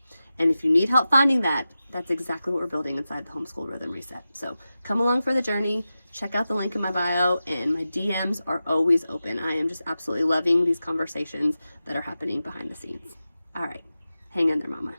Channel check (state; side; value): inverted; both; correlation -0.93